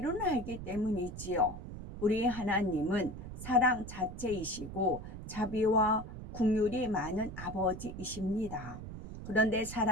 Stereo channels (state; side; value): noise; right; rumble, 10 dB below the sound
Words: 알기 때문이지요. 우리 하나님은 사랑 자체이시고 자비와 긍휼이 많은 아버지이십니다. 그런데